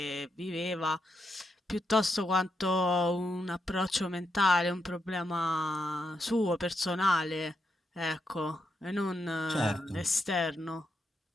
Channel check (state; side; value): normal; both; correlation 0.82